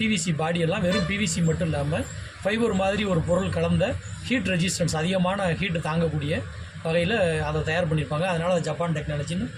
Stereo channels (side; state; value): both; identical; correlation 1.00